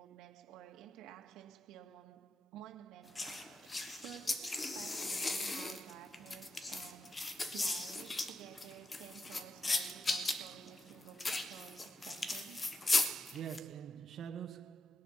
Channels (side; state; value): both; normal; correlation 0.87